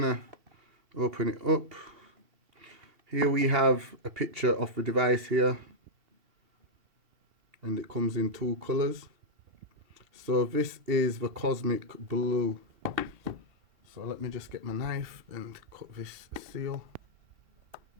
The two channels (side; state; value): left; late; 2.7 ms